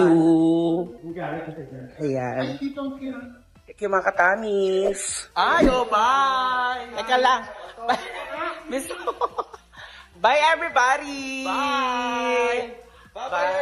Ayan. Thank you, mga katamis. Ayo, bye! Teka lang. Bye, everybody! Bye! Bye,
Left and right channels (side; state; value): both; identical; correlation 1.00